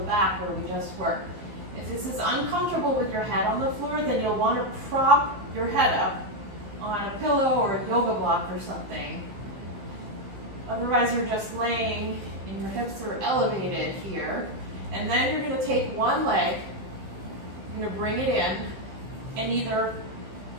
back where we just worked. If this is uncomfortable with your head on the floor, then you'll want to prop your head up on a pillow or a yoga block or something. Otherwise, you're just laying and your hips are elevated here. And then you're going to take one leg, you're going to bring it in, and either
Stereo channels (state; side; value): late; left; 15 ms